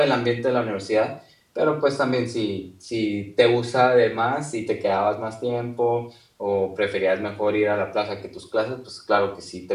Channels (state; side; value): identical; both; correlation 1.00